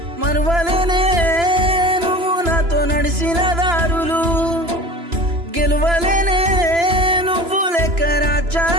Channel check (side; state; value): left; late; 3.0 ms